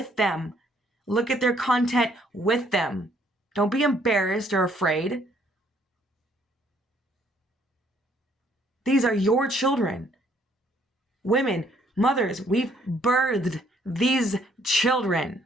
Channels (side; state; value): both; normal; correlation 0.65